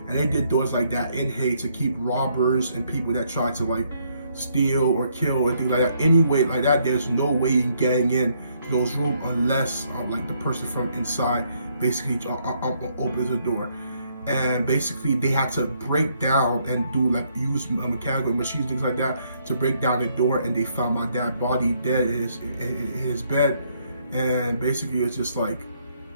And they did doors like that in Haiti to keep robbers and people that try to like steal or kill or things like that. Anyway, like that, there's no way in getting in to those rooms unless like the person from inside basically opens the door. And basically they had to break down and do like use mechanical machines, things like that, to break down the door. And they found my dad's body dead in his bed. And basically it's just like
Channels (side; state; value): both; inverted; correlation -0.71